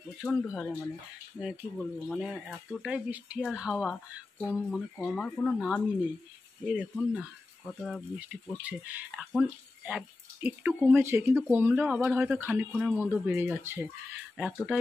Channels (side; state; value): right; quieter; 3.2 dB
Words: প্রচণ্ড হারে কি বলবো, এতটাই বৃষ্টি আর হাওয়া কমার কোনো নামই নেই। এই দেখুন না কতটা বৃষ্টি পড়ছে। এখন একটু কমেছে, কিন্তু কমলেও আবার হয়তো খানিকক্ষণের মধ্যে বেড়ে যাচ্ছে,